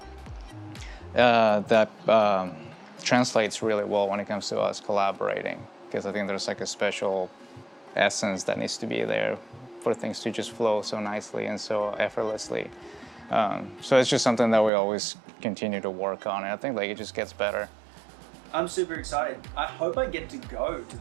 translates really well when it comes to us collaborating, because I think there's like a special essence that needs to be there for things to just flow so nicely and so effortlessly. So it's just something that we always continue to work on, and I think like it just gets better. I'm super excited. I hope I get to go to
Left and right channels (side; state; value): left; drops out; at 14.7 s